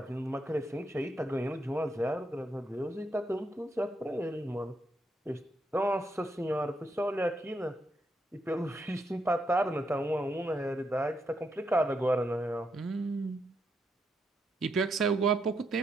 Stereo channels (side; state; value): both; normal; correlation 0.80